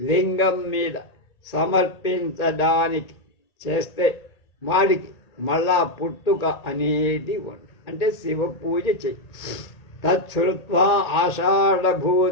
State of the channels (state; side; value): late; right; 1.8 ms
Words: మీద సమర్పించడానికి చేస్తే వాడికి మళ్ళా పుట్టుక అనేది ఉండదు. అంటే శివ పూజ చెయ్యి. తచ్చుత్వా